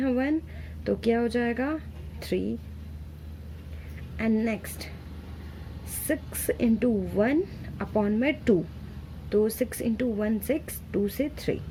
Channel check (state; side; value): identical; both; correlation 1.00